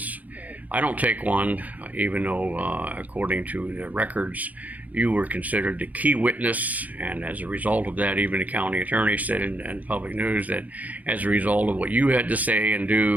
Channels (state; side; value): late; left; 0.077 ms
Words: I don't take one, even though, according to the records, you were considered the key witness, and as a result of that, even the county attorney said in public news that as a result of what you had to say and